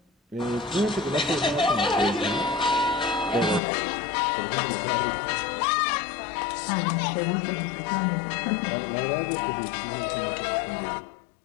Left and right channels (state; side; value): drops out; right; at 3.6 s